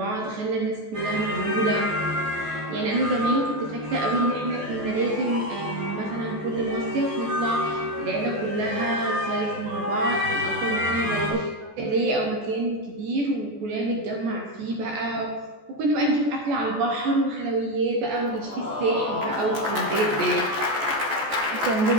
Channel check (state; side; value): late; left; 14 ms